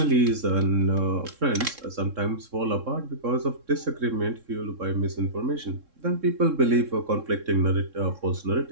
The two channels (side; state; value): left; late; 3.7 ms